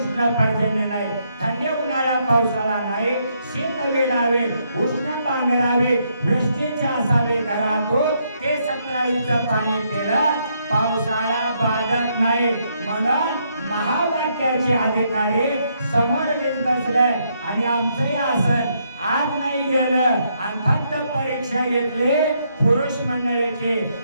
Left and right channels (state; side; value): inverted; both; correlation -0.75